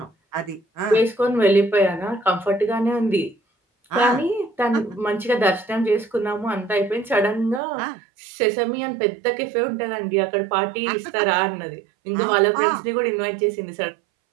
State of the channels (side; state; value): left; drops out; at 7.6 s